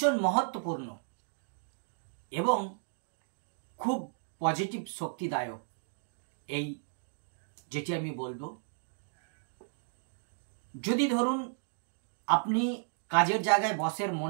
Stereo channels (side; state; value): left; silent; digital silence